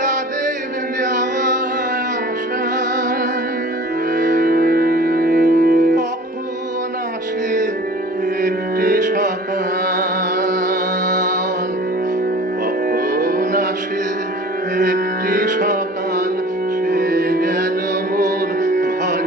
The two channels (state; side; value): normal; both; correlation 0.44